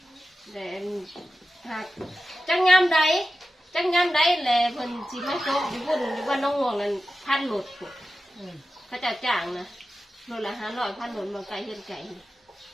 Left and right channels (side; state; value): both; normal; correlation 0.93